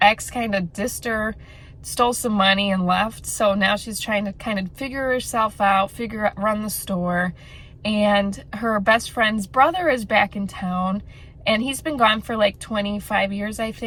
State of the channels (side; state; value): both; identical; correlation 1.00